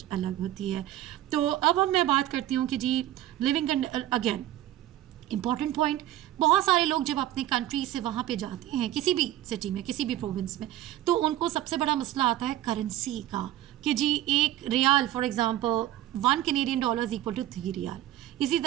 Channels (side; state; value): left; quieter; 13.7 dB